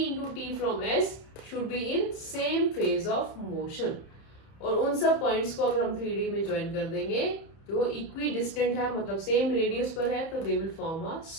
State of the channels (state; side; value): late; right; 31 ms